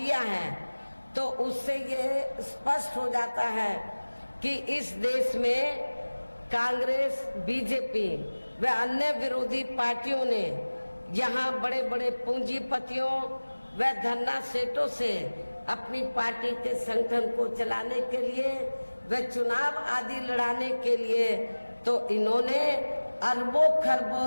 है, तो उससे ये स्पष्ट हो जाता है कि इस देश में कांग्रेस, बीजेपी व अन्य विरोधी पार्टियों ने यहाँ बड़े बड़े पूंजीपतियों व धन्ना सेठों से अपनी पार्टी के संगठन को चलाने के लिए व चुनाव आदि लड़ाने के लिए तो इन्होंने अरबों खरबों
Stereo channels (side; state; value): both; inverted; correlation -1.00